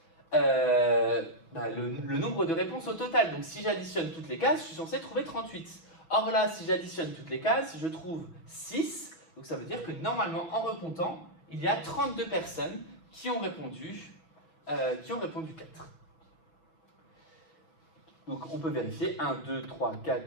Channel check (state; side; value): late; right; 6.0 ms